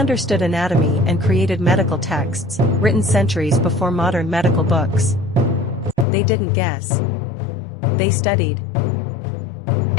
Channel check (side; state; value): right; drops out; at 6.1 s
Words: anatomy and created medical texts, written centuries before modern medical books. They didn't guess. They studied.